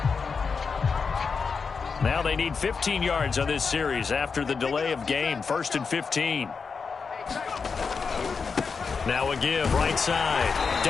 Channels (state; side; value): quieter; right; 5.3 dB